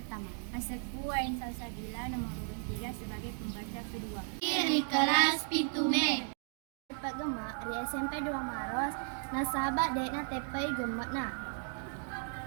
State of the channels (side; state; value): left; silent; 54 dB below the other